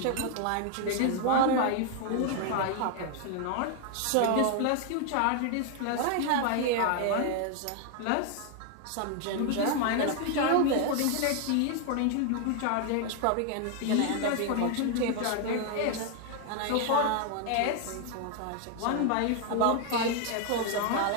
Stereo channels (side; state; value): both; different; correlation 0.01